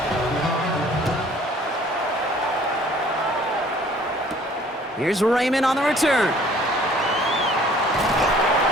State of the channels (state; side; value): normal; both; correlation 0.55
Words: Here's Raymond on the return.